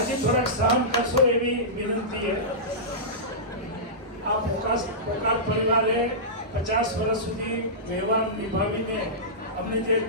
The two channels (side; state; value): both; normal; correlation -0.17